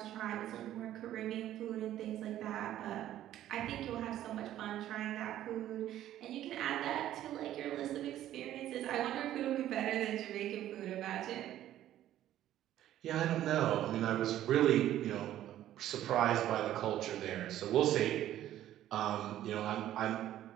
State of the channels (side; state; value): left; quieter; 12.6 dB